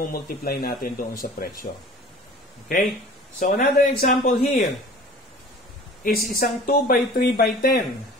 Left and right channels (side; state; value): both; normal; correlation 0.44